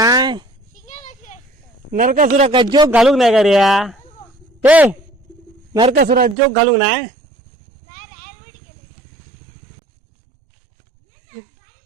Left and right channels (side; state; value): left; drops out; at 6.4 s